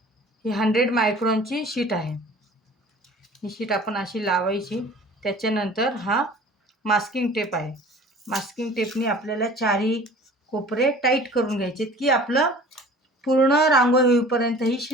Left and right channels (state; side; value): normal; both; correlation 0.45